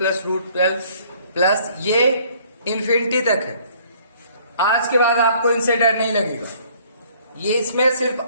√12 प्लस ये इन्फिनिटी तक है। आज के बाद आपको इनसे डर नहीं लगेगा। ये इसमें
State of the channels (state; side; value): inverted; both; correlation -0.59